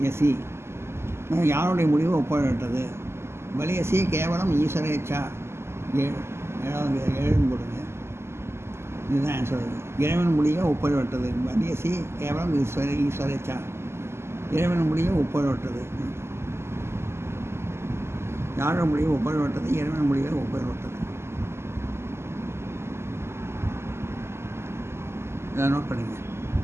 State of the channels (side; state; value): left; late; 0.12 ms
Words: யசி, யாருடைய முடிவு ஒப்புரவற்றது. பலியசி கேவலம் ஈஸ்வரேச்சா 7 போடுங்க. இதுதான் ஆன்சர். இறைவன் முடிவை ஒப்புரவற்றது. பலியசி கேவலம் ஈஸ்வரேச்சா, இறைவன் முடிவை ஒப்புரவற்றது. யாரோட முடிவை ஒப்புரவற்றது, இறைவன் முடிவை ஒப்புரவற்றது. இதை நோட் பண்ணிங்க.